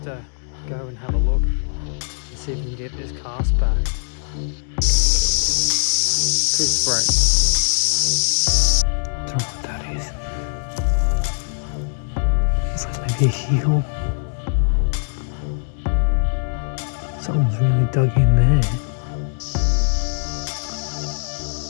to go and have a look and see if we can get this cast back. Tooth break. Don't know what that is. Looks like maybe a heel. Someone's really dug in there.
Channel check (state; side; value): silent; right; digital silence